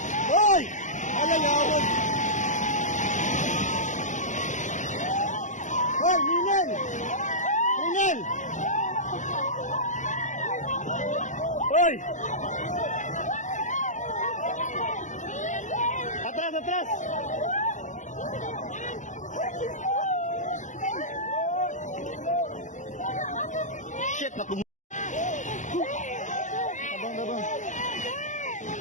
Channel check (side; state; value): right; late; 0.36 ms